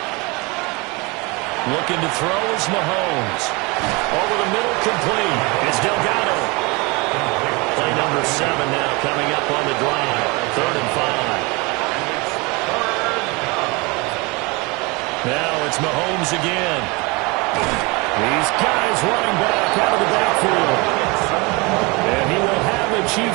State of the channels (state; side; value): quieter; left; 26.8 dB